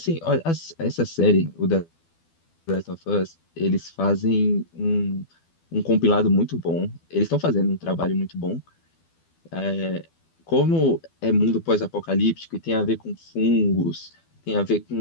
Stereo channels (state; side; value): late; right; 12 ms